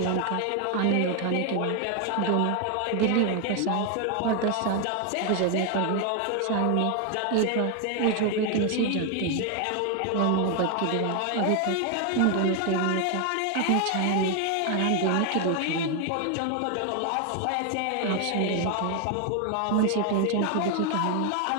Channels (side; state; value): both; different; correlation 0.01